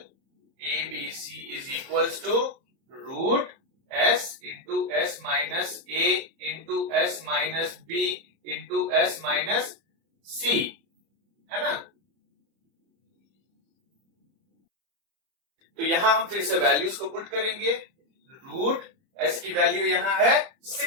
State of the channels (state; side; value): late; left; 30 ms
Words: ABC is equals to root S into S minus A into S minus B into S minus C, है ना। तो यहां हम फिर से वैल्यूज को पुट करेंगे। रूट S की वैल्यू यहां है